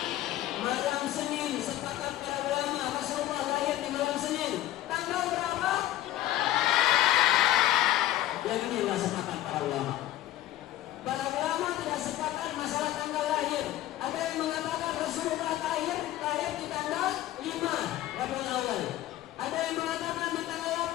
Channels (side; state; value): right; quieter; 14.4 dB